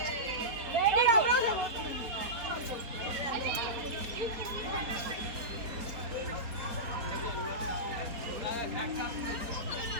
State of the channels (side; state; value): left; late; 4.3 ms